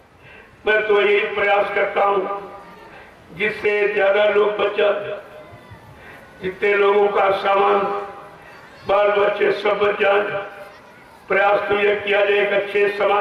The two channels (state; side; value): identical; both; correlation 1.00